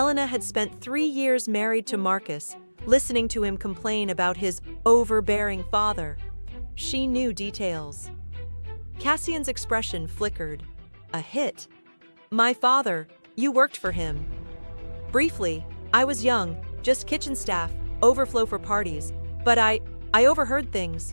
had spent 3 years married to Marcus, listening to him complain about his overbearing father. She knew details." Cassian's expression flickered. "A hit? My father, you worked for him." "Briefly. I was young, just kitchen staff, overflow for parties. But I overheard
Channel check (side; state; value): both; inverted; correlation -1.00